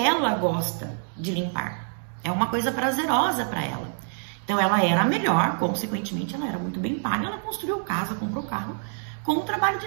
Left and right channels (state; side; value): silent; left; digital silence